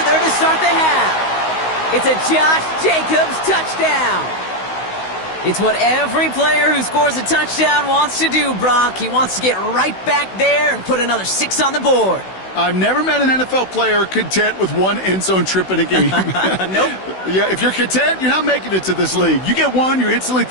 to start the half. It's a Josh Jacobs touchdown. It's what every player who scores a touchdown wants to do, Brock. He wants to get right back there and put another 6 on the board. I've never met an NFL player content with one end zone trip in a game. Nope. Yeah, if you're content, you're not making it to this league. You get one, you're instantly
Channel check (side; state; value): right; late; 16 ms